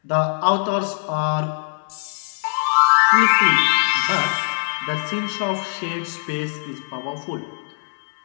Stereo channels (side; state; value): right; silent; 64 dB below the other